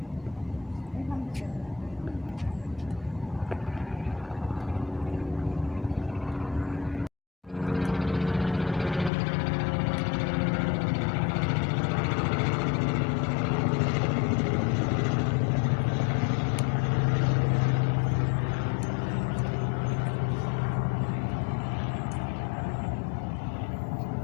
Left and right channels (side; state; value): right; drops out; at 9.1 s